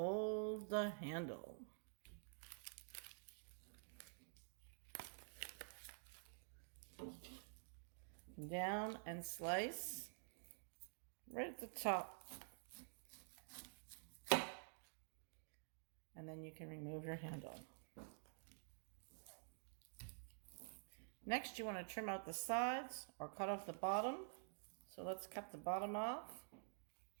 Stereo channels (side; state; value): left; silent; digital silence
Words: the handle. Down and slice right at the top. And then you can remove your handle. Next, you want to trim out the sides or cut off the bottom. So let's cut the bottom off.